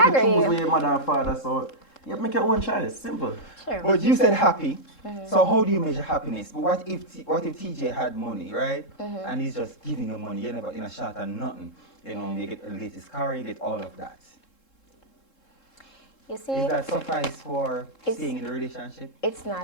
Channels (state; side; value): late; right; 3.7 ms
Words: to agree. choose with your mother and father, so you make your own choice. Simple. Sure. But you said happy. So how do you measure happiness? But what if TJ had money, right? And he's just giving you money, you never in a shot and nothing. You know, you get the latest car, you get all of that. You see, Is that suffice for staying in the relationship? it's